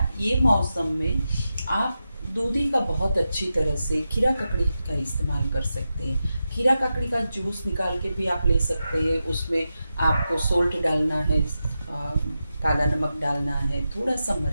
ये मौसम में आप दूधी का बहुत अच्छी तरह से खीरा ककड़ी का इस्तेमाल कर सकते हैं। खीरा ककड़ी का जूस निकाल के भी आप ले सकते हैं। उसमें आपको सोल्ट डालना है, काला नमक डालना है, थोड़ा सा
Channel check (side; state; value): both; inverted; correlation -0.90